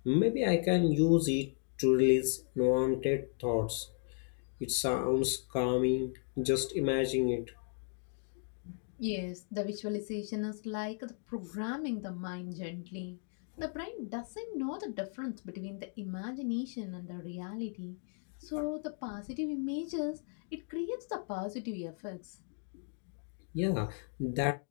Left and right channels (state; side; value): silent; right; 54 dB below the other